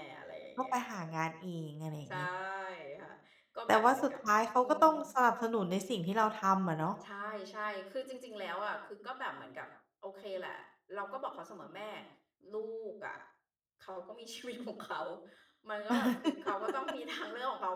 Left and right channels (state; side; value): identical; both; correlation 1.00